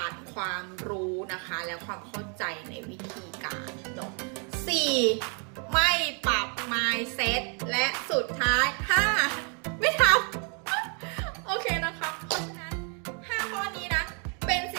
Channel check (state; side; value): quieter; left; 38.5 dB